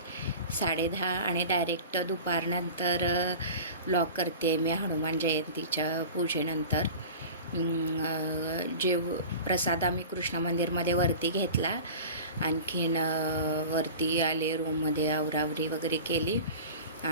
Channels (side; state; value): both; inverted; correlation -0.37